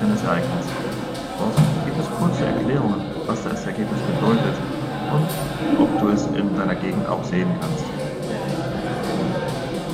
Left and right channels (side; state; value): both; identical; correlation 1.00